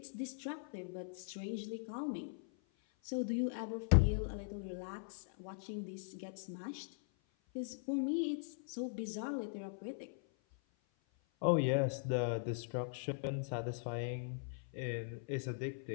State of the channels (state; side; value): silent; right; 51 dB below the other